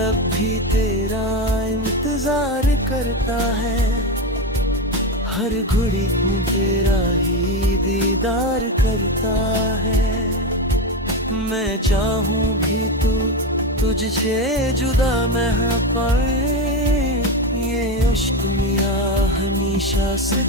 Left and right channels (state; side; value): normal; both; correlation 0.15